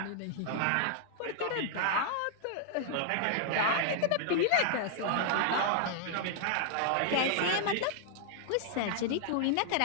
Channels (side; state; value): both; different; correlation 0.00